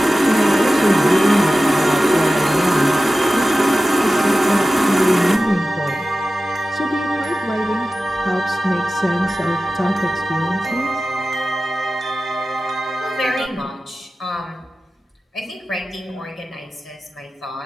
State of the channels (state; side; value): normal; both; correlation 0.95